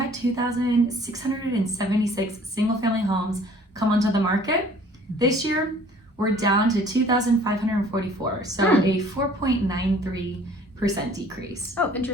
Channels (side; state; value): both; normal; correlation 0.53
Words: 2,676 single family homes come onto the market. This year, we're down to 2,544, so a 4.93% decrease. Oh,